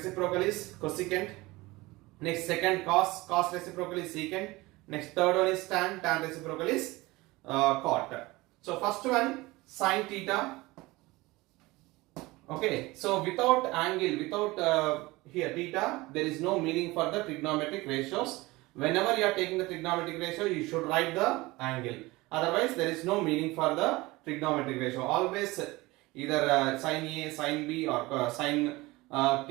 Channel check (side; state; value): left; quieter; 21.2 dB